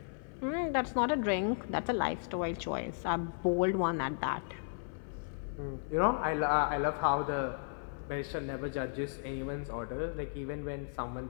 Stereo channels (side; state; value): right; silent; 55 dB below the other